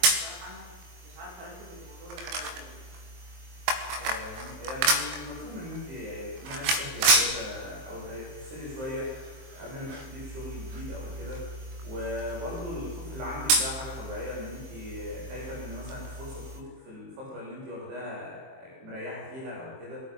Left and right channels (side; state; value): left; late; 23 ms